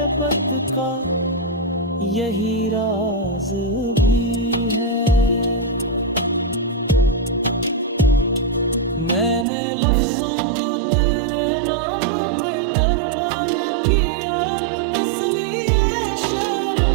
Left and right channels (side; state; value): left; drops out; at 9.5 s